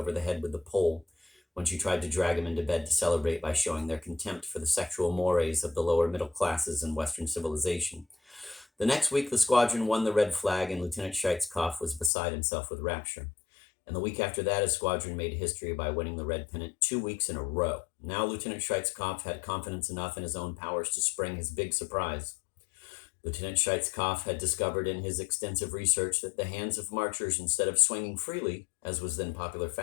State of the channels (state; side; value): drops out; right; at 12.1 s